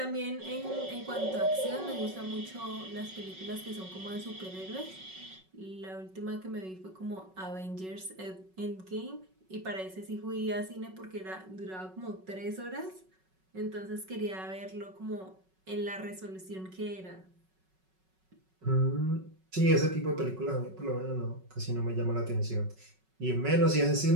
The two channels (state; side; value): late; left; 5.4 ms